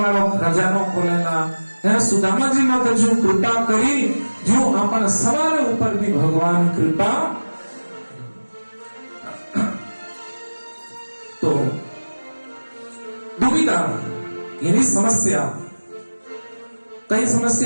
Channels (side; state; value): both; inverted; correlation -1.00